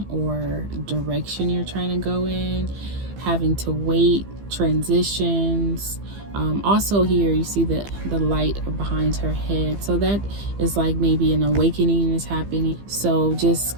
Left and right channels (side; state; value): left; late; 15 ms